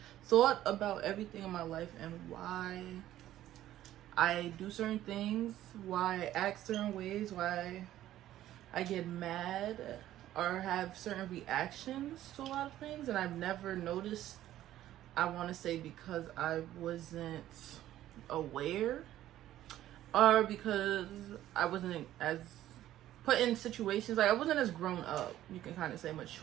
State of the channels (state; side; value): quieter; left; 13.2 dB